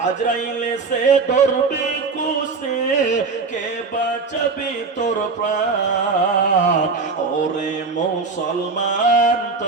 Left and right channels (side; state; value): left; quieter; 4.4 dB